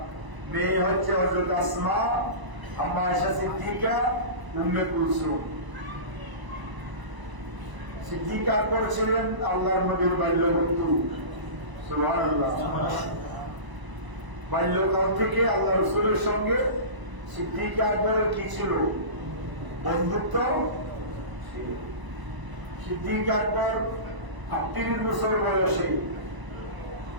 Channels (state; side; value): late; left; 1.0 ms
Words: মেয়ে হচ্ছে হযরত আসমা, আম্মা আয়েশা সিদ্দিকা, উম্মে কুলসুম। সিদ্দিক আকবর ছিলেন আল্লাহর নবীর বাল্যবন্ধু। সুবহানাল্লাহ। বাল্যকাল থেকে আল্লাহ রাসূলের সঙ্গে সিদ্দিক আকবরের কি ছিল? বন্ধুত্ব। সিদ্দিক আকবর 38 বছর বয়সে